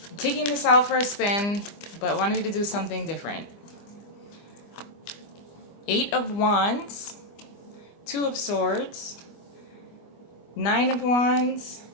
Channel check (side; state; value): right; late; 25 ms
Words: I'm taking this out for a spin, but wanted to do something different. Eight of Wands, Two of Swords, Nine of Wands,